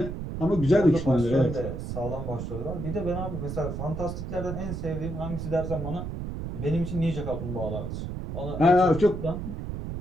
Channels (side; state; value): right; noise; rumble, 6 dB below the sound